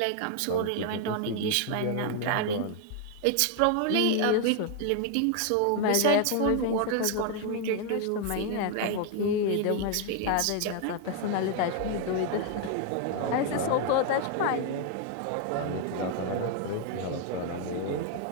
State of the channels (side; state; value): both; different; correlation 0.00